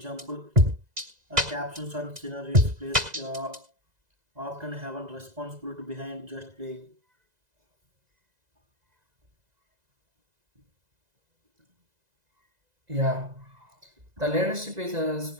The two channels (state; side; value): late; left; 2.0 ms